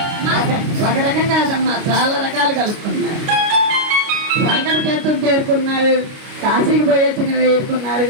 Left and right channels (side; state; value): left; late; 29 ms